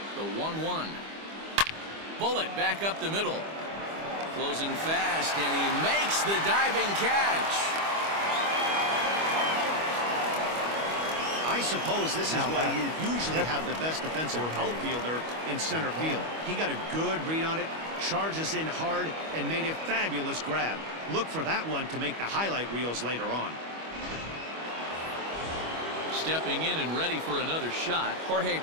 The 1-1. Bullet back up the middle. Closing fast, and he makes the diving catch. I suppose this is Now why back. you usually have the best defensive outfielder in center field. He got a good read on it, charges in hard, and made a fabulous grab. Look for that one to make the highlight reels later on. Stepping in and ready for another shot, Jorge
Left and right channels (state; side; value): late; left; 25 ms